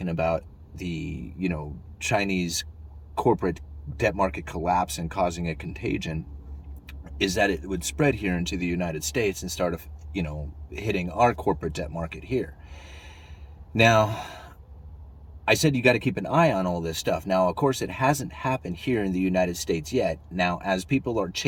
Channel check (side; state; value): both; identical; correlation 1.00